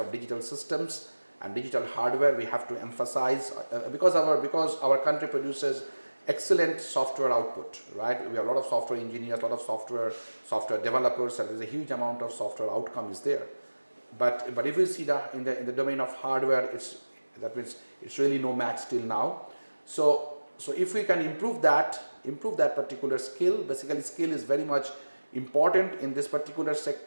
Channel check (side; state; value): both; inverted; correlation -1.00